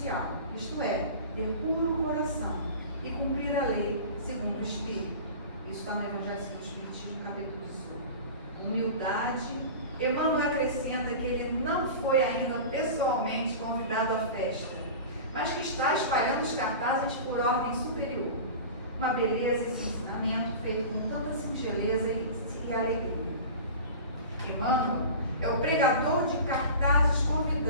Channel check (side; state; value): both; inverted; correlation -0.34